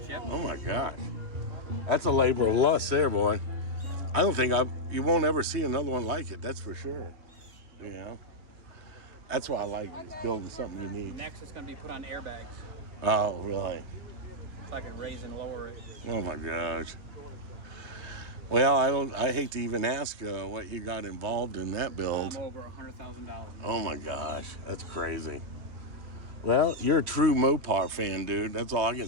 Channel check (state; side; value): late; left; 3.2 ms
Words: yep. Oh my gosh. That's a labor of lust there, boy. I don't think you won't ever see another one like it, that's for sure. You know? That's why I like is building something unique. Next, it's going to be put on airbags, Oh, really? so I can raise and lower it. Oh my gosh. Well, I hate to even ask what you got involved in that build. I'm over $100,000. Oh my gosh, that's crazy. Well, you're a true Mopar fan, dude. That's all I can